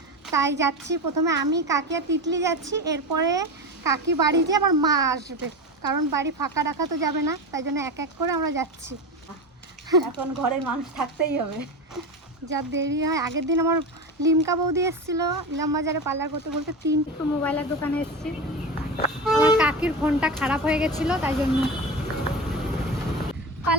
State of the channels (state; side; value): normal; both; correlation 0.23